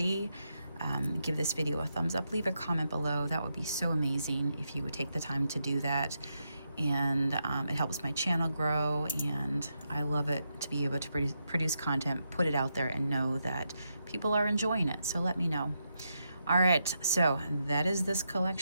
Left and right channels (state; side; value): inverted; both; correlation -0.83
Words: Give this video a thumbs up, leave a comment below. That would be so amazing if you would take the time to do that. And it helps my channel grow, and I love it to be able to produce content, put it out there, and know that people are enjoying it. So let me know. All right, so that is this